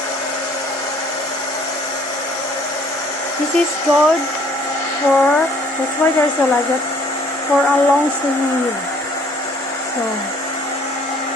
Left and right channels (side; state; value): both; normal; correlation 0.59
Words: this is good for, that's why they're so like that, for a long sleeve. So